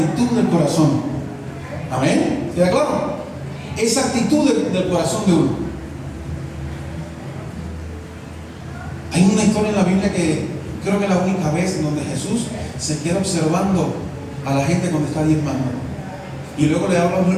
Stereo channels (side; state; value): both; identical; correlation 1.00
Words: del corazón. ¿Amén? ¿Queda claro? Esa actitud del corazón de uno. Hay una historia en la Biblia que creo que es la única vez donde Jesús se queda observando a la gente cuando está diezmando. Y luego le habla